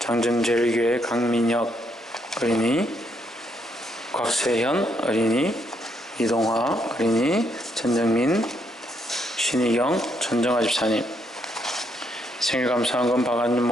장정제일교회 강민혁 어린이, 곽세현 어린이, 이동화 어린이, 전정민, 신희경, 전정아 집사님. 생일 감사한금 박안준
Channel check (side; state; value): both; normal; correlation 0.75